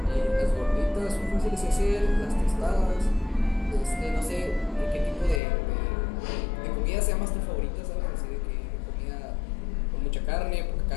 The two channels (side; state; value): right; drops out; at 5.4 s